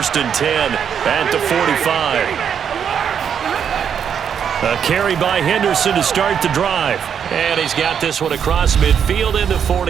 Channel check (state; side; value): quieter; left; 7.9 dB